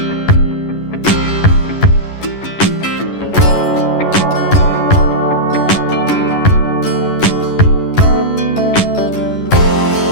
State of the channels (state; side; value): late; right; 11 ms